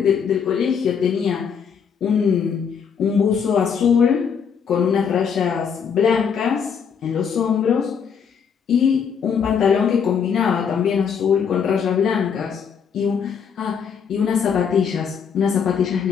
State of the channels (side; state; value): right; quieter; 6.9 dB